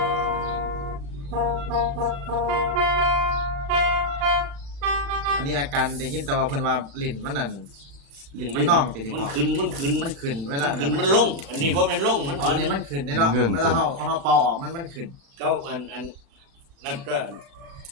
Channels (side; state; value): left; late; 35 ms